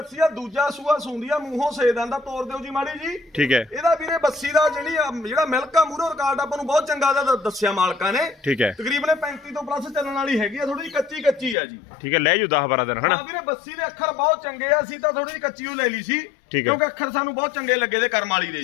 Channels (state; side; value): drops out; right; at 11.6 s